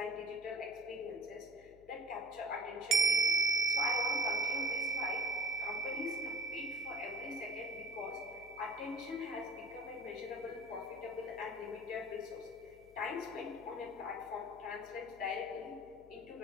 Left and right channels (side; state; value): left; noise; hum, 25 dB below the sound